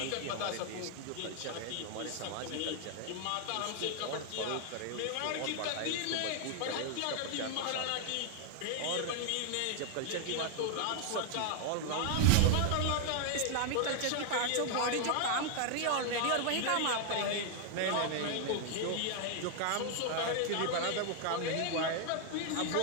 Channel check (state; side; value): different; both; correlation 0.00